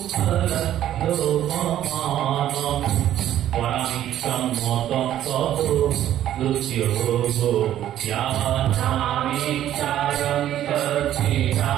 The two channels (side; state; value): left; quieter; 11.9 dB